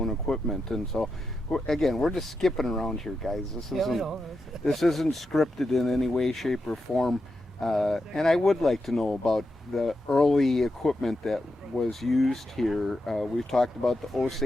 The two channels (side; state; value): both; normal; correlation 0.87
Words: equipment, and so we're just skipping around here, guys. This isn't scripted in any way, shape, or form, and I would like to know about the early equipment that was used here. We've talked about the